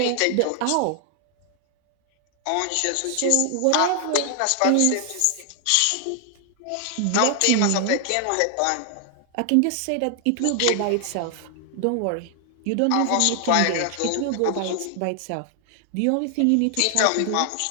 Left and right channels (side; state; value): both; different; correlation 0.00